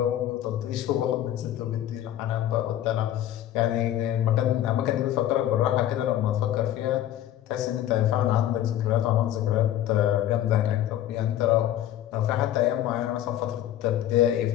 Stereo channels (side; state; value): right; quieter; 12.1 dB